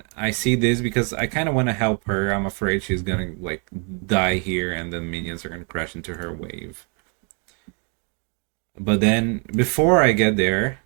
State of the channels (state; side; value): quieter; left; 38.2 dB